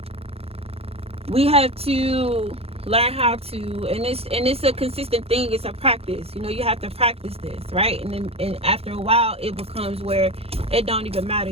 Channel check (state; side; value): late; left; 0.29 ms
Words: we have to learn how to, and it's a consistent thing. It's a practice. You know, you have to practice this, right? And after a while, it becomes where it don't even matter.